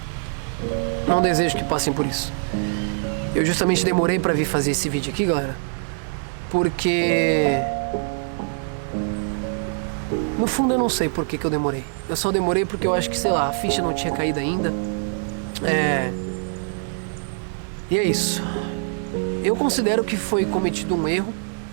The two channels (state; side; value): silent; left; digital silence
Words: não desejo que passem por isso. Eu justamente demorei pra vir fazer esse vídeo aqui, galera, porque no fundo eu não sei por que eu demorei. Eu só demorei porque eu acho que, sei lá, a ficha não tinha caído ainda. E é isso. Eu considero que foi cometido um erro,